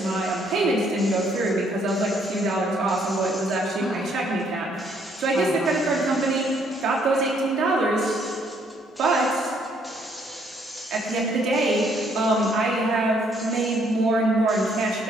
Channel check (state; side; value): normal; both; correlation 0.67